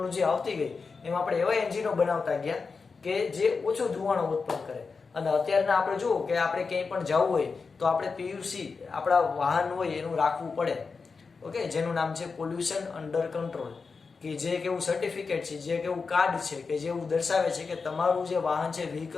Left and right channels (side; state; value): right; quieter; 4.8 dB